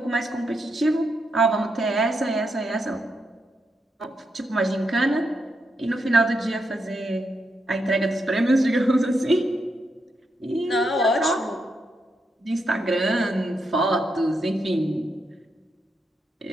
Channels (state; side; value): normal; both; correlation 0.82